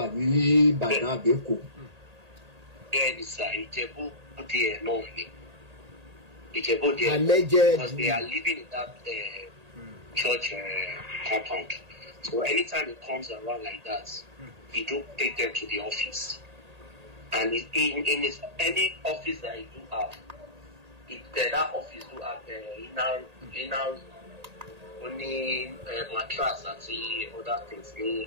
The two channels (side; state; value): left; late; 1.8 ms